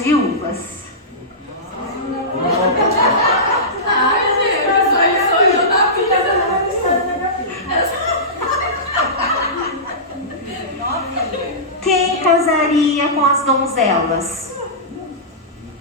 Quem casaria com as donzelas?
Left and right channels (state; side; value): normal; both; correlation -0.18